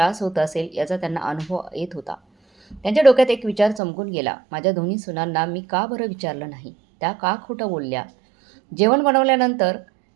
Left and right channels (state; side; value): drops out; left; at 3.8 s